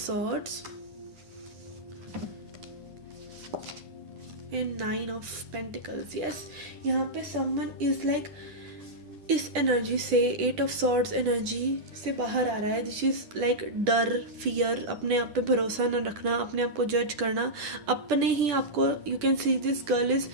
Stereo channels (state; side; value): late; left; 9.8 ms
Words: and Nine of Pentacles. Yes, यहाँ पे someone is like इस energy से, eight of swords energy से बाहर आ रहा है. This is like डर, fear, अपने आप पे भरोसा न रखना, अपने आप को जज करना, अपने ही आपको, you can see this girl is